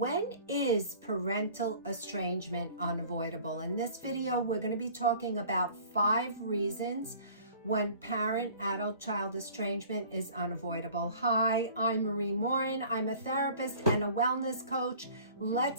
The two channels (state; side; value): inverted; both; correlation -0.48